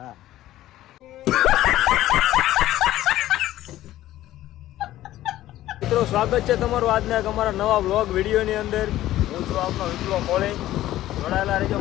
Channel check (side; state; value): right; quieter; 14.5 dB